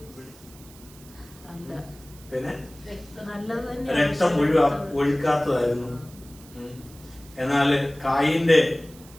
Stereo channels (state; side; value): noise; right; hiss, 22 dB below the sound